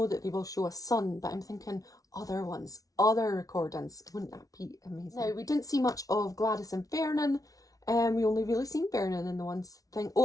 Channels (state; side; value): late; right; 0.18 ms